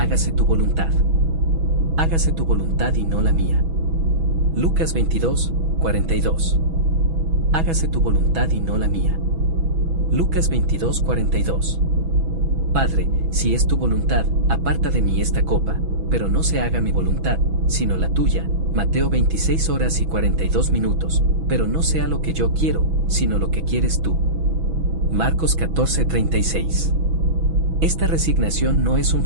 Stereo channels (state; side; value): late; left; 6.1 ms